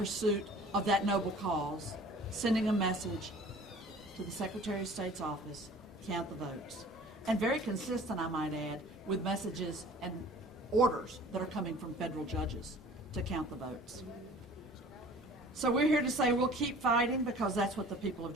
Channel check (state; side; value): normal; both; correlation 0.47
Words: of that noble cause, sending a message to the Secretary of State's office, count the votes. And very consistent, I might add, with messages and orders that are coming from federal judges to count the votes. So we're here to say we'll keep fighting because that's what the people of